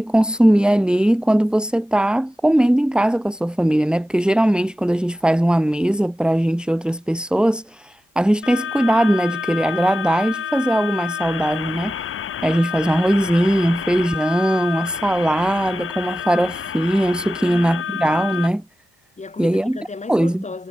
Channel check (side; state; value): both; normal; correlation 0.94